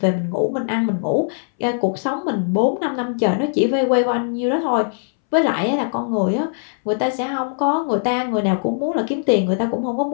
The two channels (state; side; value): silent; right; 66 dB below the other